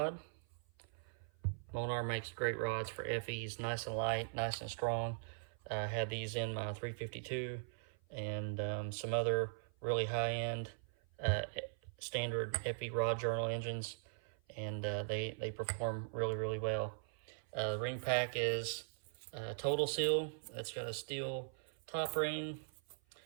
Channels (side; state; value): left; silent; 51 dB below the other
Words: Molnar makes great rods for FEs, nice and light, nice and strong. I had these in my 352 and some other really high-end standard FE rod journal engines, and they perform really well. The ring pack is Total Seal. It's got a steel top ring